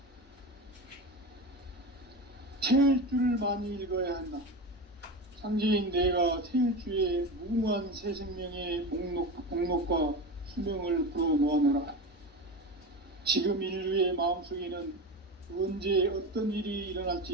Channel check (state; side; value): normal; both; correlation 0.24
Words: 태일주를 많이 읽어야 한다. 상제인 내가 태일주의 무궁한 새 생명의 목록과 수명을 불어놓아노라. 지금 인류의 마음속에는 언제 어떤 일이